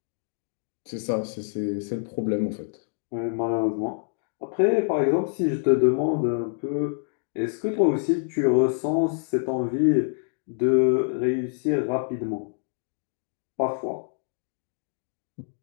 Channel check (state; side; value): silent; right; digital silence